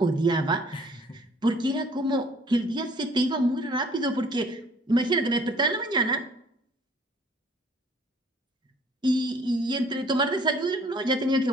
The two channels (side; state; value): both; normal; correlation 0.56